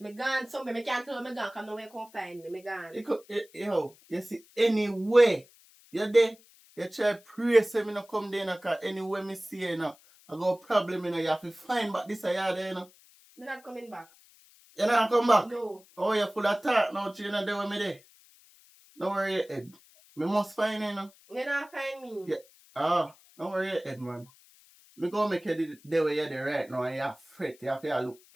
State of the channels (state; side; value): noise; left; hiss, 27 dB below the sound